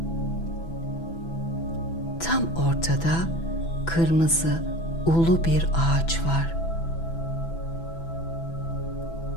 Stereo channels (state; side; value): late; right; 6.0 ms